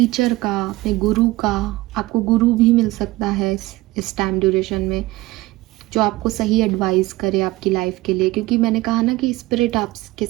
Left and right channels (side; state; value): left; quieter; 19.2 dB